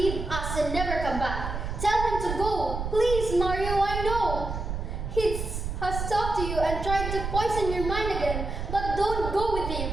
us and never come back. Tell him to go. Please, Mario, I know. He has talked to you and tried to poison your mind again, but don't go with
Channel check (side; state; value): right; noise; rumble, 4 dB below the sound